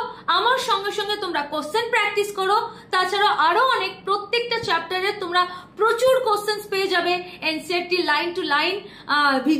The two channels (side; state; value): both; identical; correlation 1.00